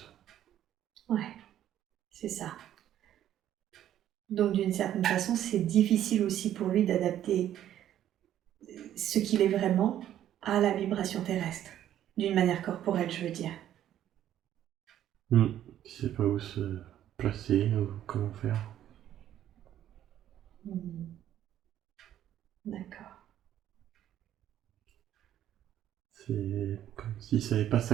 Ouais, c'est ça. Donc d'une certaine façon, c'est difficile aussi pour lui d'adapter ce qu'il est vraiment à la vibration terrestre, d'une manière corporelle, je veux dire. Il sait pas où se placer ou comment faire. D'accord. C'est comme s'il savait pas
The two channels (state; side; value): quieter; left; 11.5 dB